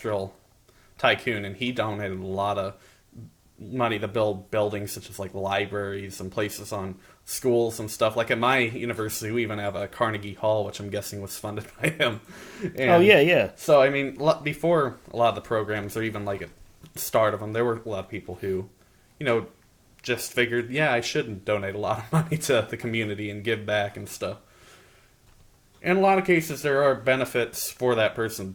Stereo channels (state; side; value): identical; both; correlation 1.00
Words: tycoon, and he donated a lot of money to build buildings such as like libraries and places on schools and stuff. Like at my university, we even have a Carnegie Hall, which I'm guessing was funded by him. And yeah. so, I mean, before a lot of the programs, or even like at the start of them, there were a lot of people who, just figured, yeah, I should donate a lot of money to the community and give back and stuff. In a lot of cases, there are benefits for that person to